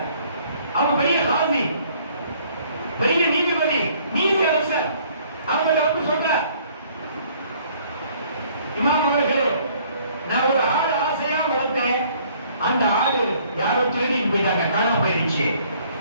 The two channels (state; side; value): inverted; both; correlation -0.60